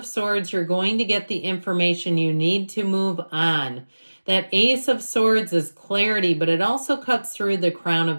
Swords, you're going to get the information you need to move on. That Ace of Swords is clarity, but it also cuts through the crown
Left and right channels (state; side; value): inverted; both; correlation -1.00